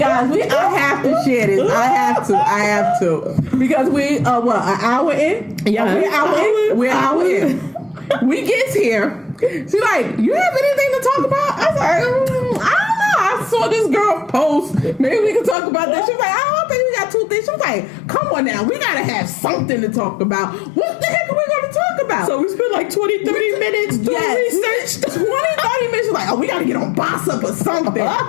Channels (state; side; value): drops out; right; at 15.6 s